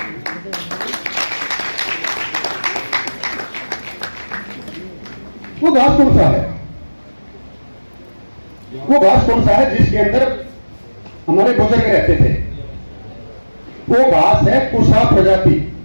वो घास कौन सा है? वो घास कौन सा है जिसके अंदर हमारे बुजुर्ग रहते थे? वो घास है कुशा प्रजाति।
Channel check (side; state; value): both; inverted; correlation -1.00